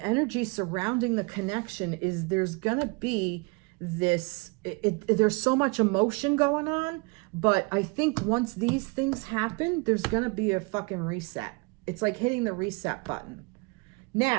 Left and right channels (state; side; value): quieter; left; 29.7 dB